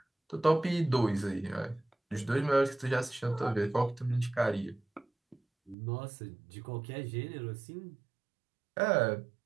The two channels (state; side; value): drops out; left; at 5.8 s